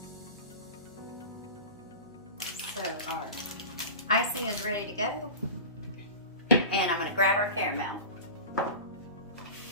So our icing is ready to go. And I'm going to grab our caramel.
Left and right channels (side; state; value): both; inverted; correlation -0.33